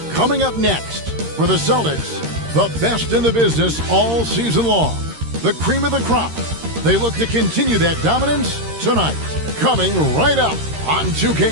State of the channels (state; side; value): late; left; 13 ms